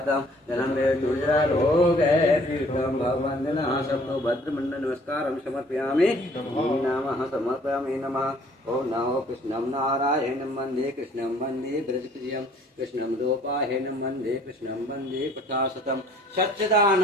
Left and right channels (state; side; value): normal; both; correlation 0.57